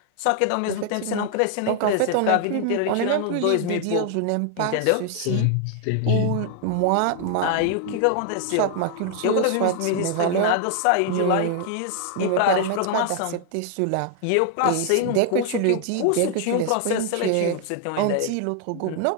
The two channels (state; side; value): different; both; correlation 0.00